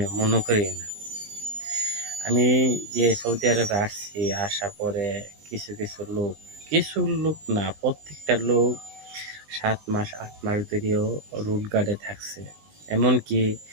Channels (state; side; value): late; left; 20 ms